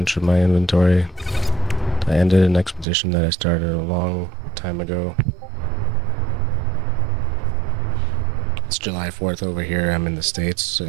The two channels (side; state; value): left; drops out; at 2.9 s